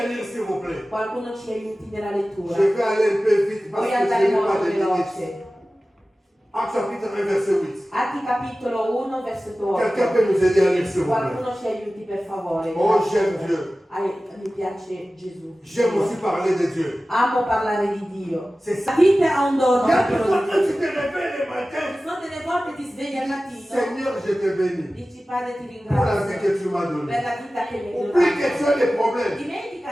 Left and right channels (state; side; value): normal; both; correlation 0.96